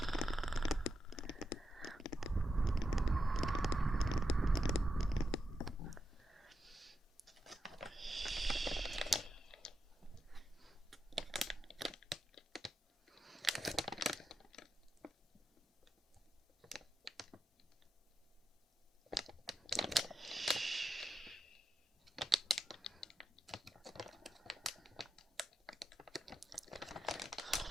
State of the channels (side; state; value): both; normal; correlation 0.87